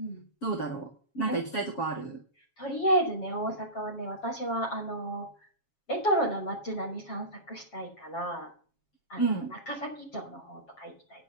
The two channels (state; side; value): late; right; 7.3 ms